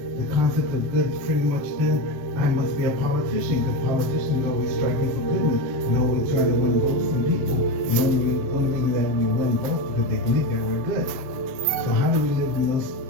the concept of good is pretty much then, I must be a politician, because politicians always striking for goodness and always trying to win votes from people. And the only reason that we win votes because they believe that we're good. So how do we live in those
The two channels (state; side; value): late; left; 7.8 ms